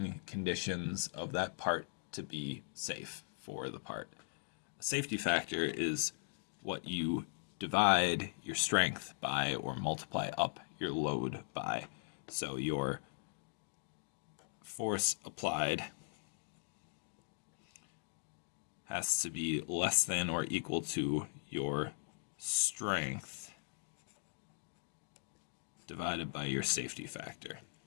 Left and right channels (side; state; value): right; silent; digital silence